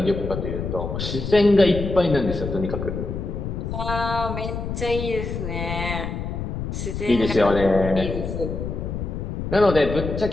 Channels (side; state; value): left; noise; rumble, 5 dB below the sound